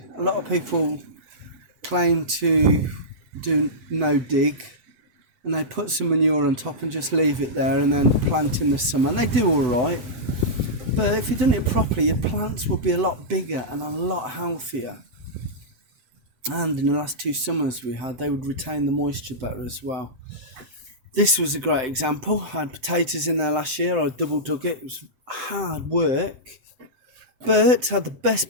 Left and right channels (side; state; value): left; late; 7.8 ms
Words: A lot of people claim to do no dig, and they put some manure on top and just leave it there and then plant in the summer, and they do all right. But if you'd done it properly, your plants would be a lot bigger and a lot healthier. And in the last 2 summers we had, they would retain the moisture better as well. This was a great example. I had potatoes in there last year. I double dug it. It was hard work, but had the best